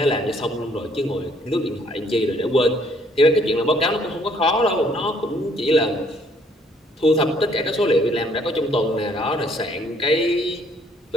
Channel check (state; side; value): normal; both; correlation 0.64